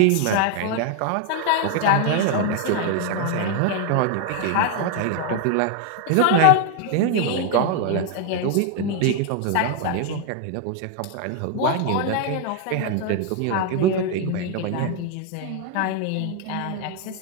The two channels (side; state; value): both; different; correlation 0.01